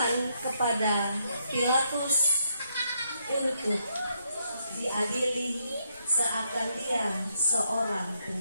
kepada Pilatus untuk diadili seakan dia seorang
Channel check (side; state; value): both; inverted; correlation -0.76